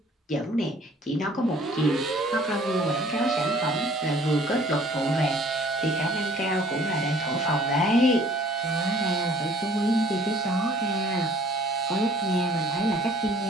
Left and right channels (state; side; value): normal; both; correlation 0.55